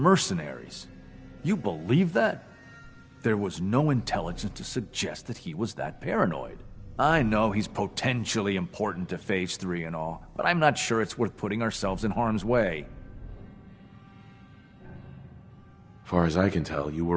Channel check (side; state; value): both; identical; correlation 1.00